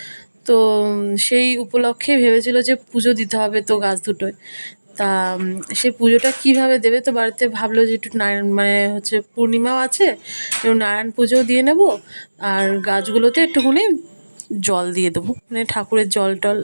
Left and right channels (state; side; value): inverted; both; correlation -1.00